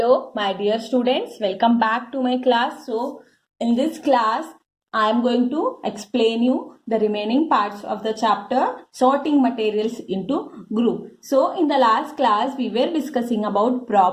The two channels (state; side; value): identical; both; correlation 1.00